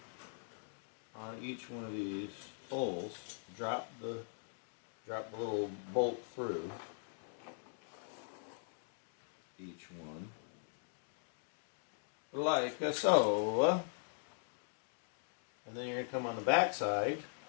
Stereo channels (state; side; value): silent; right; digital silence